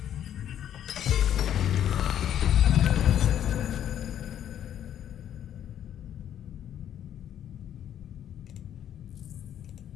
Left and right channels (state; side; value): quieter; right; 10.3 dB